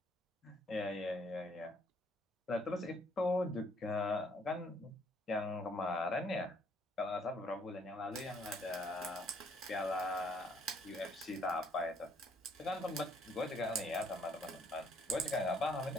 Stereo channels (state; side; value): normal; both; correlation 0.65